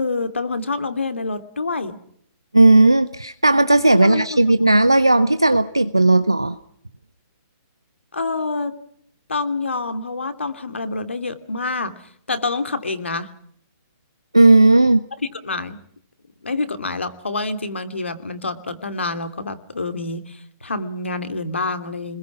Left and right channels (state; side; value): inverted; both; correlation -0.90